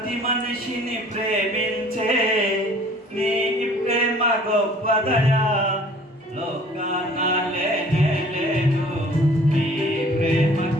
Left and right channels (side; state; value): both; normal; correlation 0.52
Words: మనిషిని ప్రేమించే నీ ప్రేమ గొప్పదయా, లోకాన లేనే లేదు నీ ప్రేమ